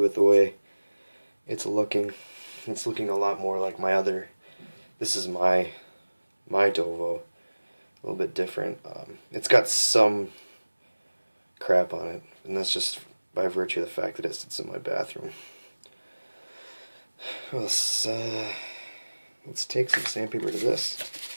the way it's looking. It's looking a lot more like my other. This is my Dovo, a little bit different. It's got some crap on it, and that's just by virtue of the fact that it sits in my bathroom. Let's take some sandpaper to this.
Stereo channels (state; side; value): inverted; both; correlation -1.00